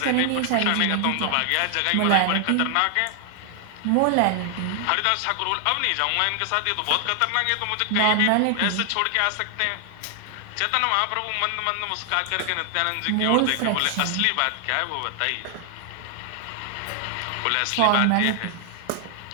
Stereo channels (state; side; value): different; both; correlation 0.00